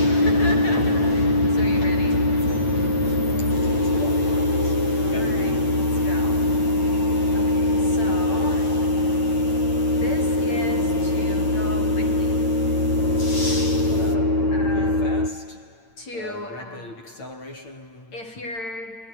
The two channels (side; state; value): right; late; 8.8 ms